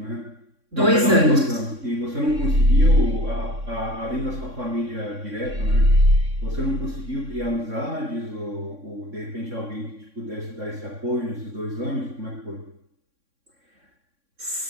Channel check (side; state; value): left; late; 3.6 ms